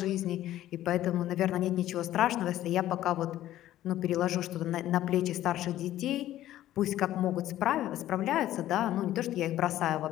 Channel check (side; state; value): right; quieter; 13.6 dB